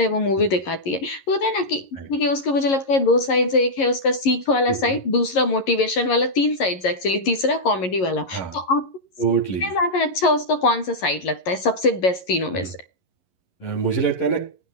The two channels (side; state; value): right; late; 11 ms